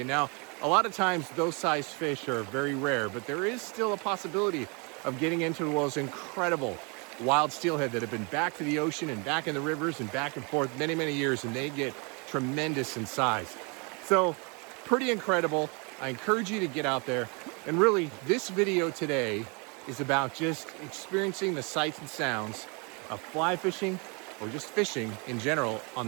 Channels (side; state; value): left; quieter; 32.3 dB